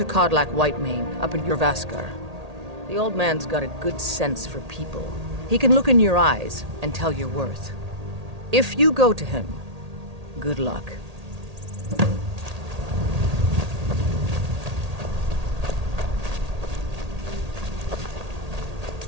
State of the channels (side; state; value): left; late; 1.8 ms